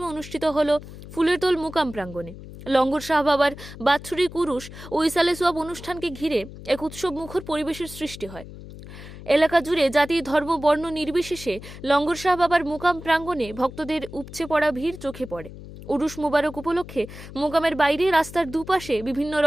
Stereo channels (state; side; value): noise; left; hum, 14 dB below the sound